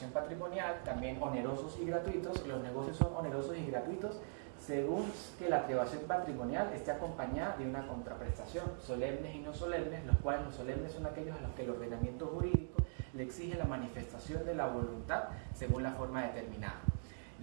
patrimonial, también onerosos y gratuitos. Los negocios son onerosos y gratuitos según que la privación patrimonial esté acompañada de una contraprestación, solemnes y no solemnes, los cuales los solemnes son aquellos a los que el ordenamiento jurídico le exige la manifestación de la voluntad según la forma determinada.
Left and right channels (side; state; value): left; silent; digital silence